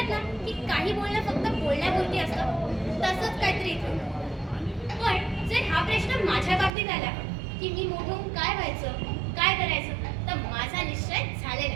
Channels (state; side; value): drops out; left; at 6.7 s